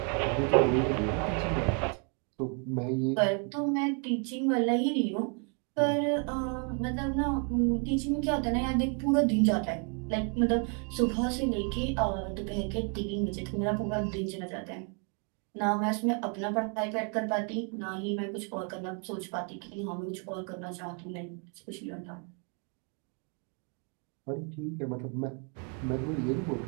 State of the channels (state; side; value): quieter; left; 38.8 dB